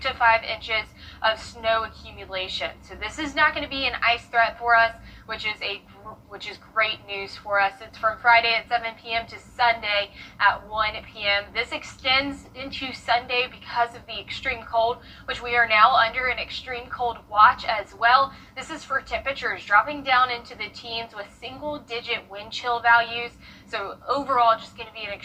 5 inches of snow accumulation. So this is not going to be an ice threat for us, which is great news for us. It's from Friday at 7 p.m. to Sunday at 1 p.m. This extends into Sunday because of the extreme cold, which we are now under an extreme cold watch as well. This is for temperatures dropping down into the teens with single-digit wind chill values. So overall, just going to be an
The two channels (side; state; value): both; identical; correlation 1.00